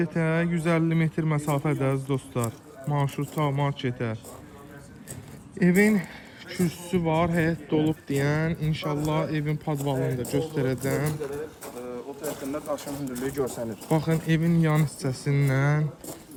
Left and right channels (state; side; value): identical; both; correlation 1.00